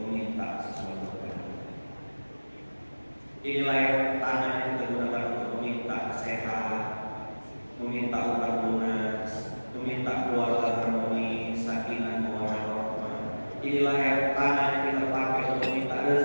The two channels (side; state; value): both; inverted; correlation -1.00